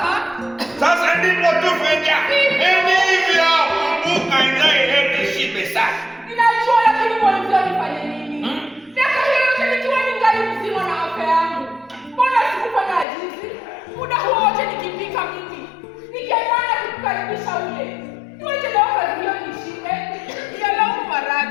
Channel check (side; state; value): right; drops out; at 13.1 s